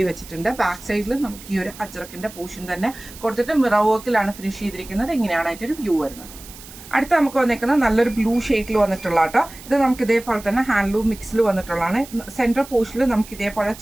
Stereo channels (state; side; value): noise; right; hiss, 17 dB below the sound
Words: വെച്ചിട്ടുണ്ട്. ബാക്ക് സൈഡിൽ നമുക്ക് ഈ ഒരു അജ്രക്കിന്റെ പോർഷൻ തന്നെ കൊടുത്തിട്ട് മിറർ വർക്കിലാണ് ഫിനിഷ് ചെയ്തിരിക്കുന്നത്. ഇങ്ങനെയാണ് അതിന്റെ വ്യൂ വരുന്നത്. അടുത്ത നമുക്ക് വന്നേക്കുന്നത് നല്ലൊരു ബ്ലൂ ഷെയ്ഡിൽ വന്നിട്ടുള്ള കേട്ടോ. ഇത് നമുക്ക് ഇതേപോലെ തന്നെ ഹാൻഡ്ലൂം മിക്സിൽ വന്നിട്ടുള്ളതാണ്. സെൻട്രൽ പോർഷനിൽ നമുക്ക് ഇതേപോലെ